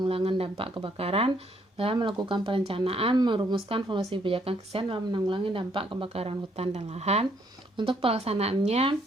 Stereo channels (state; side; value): normal; both; correlation 0.69